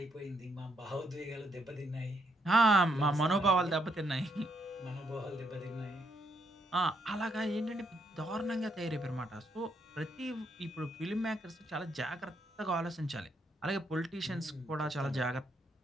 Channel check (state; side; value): normal; both; correlation 0.75